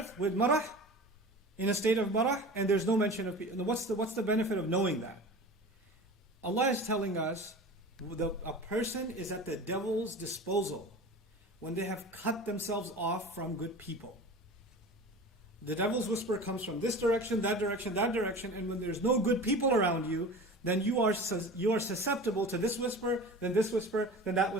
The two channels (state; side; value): normal; both; correlation 0.36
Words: with marah, in a state of marah, and there's no mention of people. What's the benefit of knowing that? Allah is telling us a person is at the devil's disposal when they have cut themselves off from good people. The devil's whisper comes from this direction, that direction, that direction, and when there's no good people around you, then you are susceptible to this whisper, then that whisper,